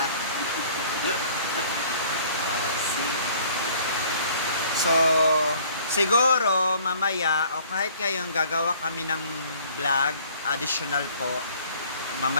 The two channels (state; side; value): inverted; both; correlation -0.54